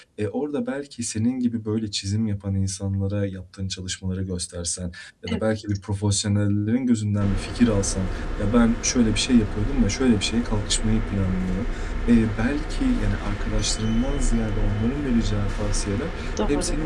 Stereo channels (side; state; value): both; identical; correlation 1.00